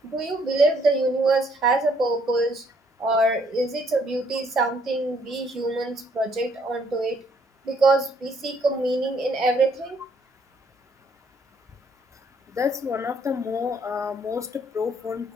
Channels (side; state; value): both; normal; correlation 0.67